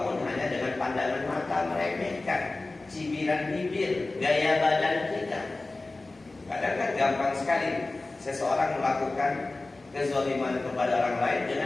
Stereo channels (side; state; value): right; quieter; 3.2 dB